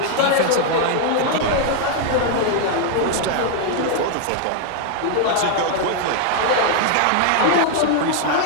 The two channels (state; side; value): different; both; correlation 0.00